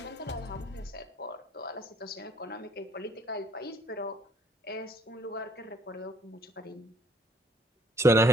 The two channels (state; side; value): normal; both; correlation 0.61